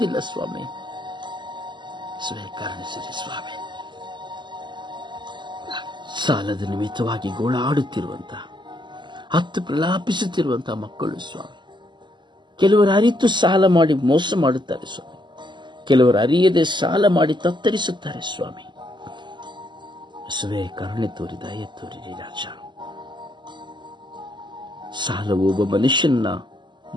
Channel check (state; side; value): late; left; 0.22 ms